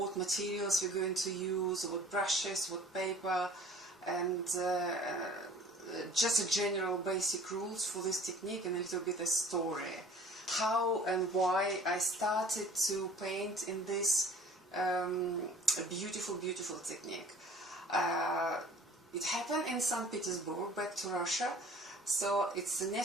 materials we're going to use, what brushes, what paper, and just a general basic rules for this technique, and a little bit a story. How and why I started to paint in this beautiful technique. It happened in St. Petersburg, back to Russia. So it's the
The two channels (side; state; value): both; normal; correlation 0.50